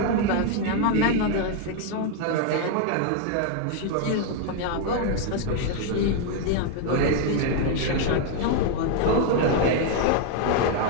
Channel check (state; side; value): different; both; correlation 0.00